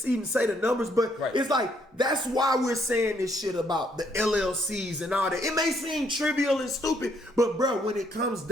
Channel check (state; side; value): normal; both; correlation 0.70